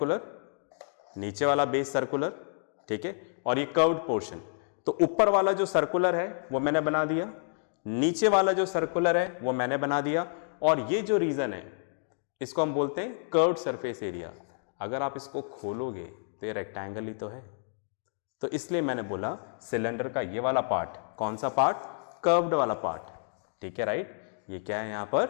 नीचे वाला बेस सर्कुलर, ठीक है, और ये कर्व्ड पोर्शन। तो ऊपर वाला जो सर्कुलर है वो मैंने बना दिया, नीचे वाला जो सर्कुलर है वो मैंने बना दिया, और ये जो रीजन है इसको हम बोलते हैं कर्व्ड सरफेस एरिया। अगर आप इसको खोलोगे तो ये रेक्टेंगल ही तो है। तो इसलिए मैंने बोला सिलेंडर का ये वाला पार्ट, कौन सा पार्ट? कर्व्ड वाला पार्ट। ठीक है, राइट, ये क्या है यहां पर?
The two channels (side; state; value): right; silent; digital silence